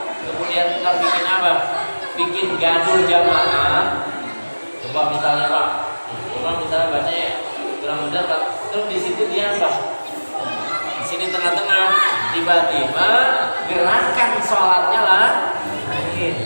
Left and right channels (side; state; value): both; inverted; correlation -1.00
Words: kemudian kita bikin apa? Bikin gaduh jamaah. Coba misalnya Pak, coba misalnya bacanya kurang benar, terus di situ dia apa? Di sini tengah-tengah, tiba-tiba gerakan sholatnya lah.